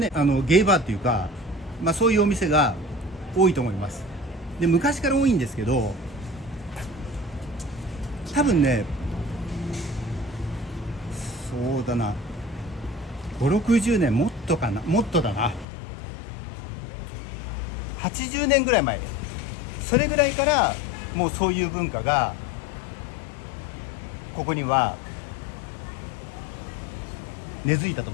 ゲイバーっていうか、そういうお店が多いと思います。で昔から多いんですけど、多分ねそうだな、5、60年もっとかな、もっとだな、80年ぐらい前、それぐらいからもうそういう文化がここには根付いたと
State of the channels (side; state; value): right; drops out; at 15.7 s